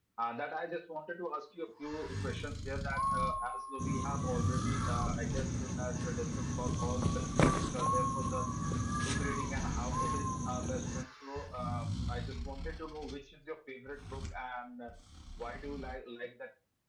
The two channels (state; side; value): identical; both; correlation 1.00